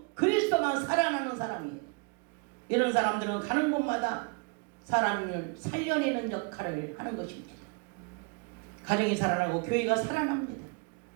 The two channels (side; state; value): left; quieter; 34.0 dB